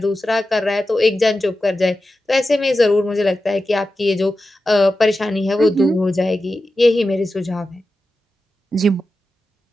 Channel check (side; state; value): both; normal; correlation 0.92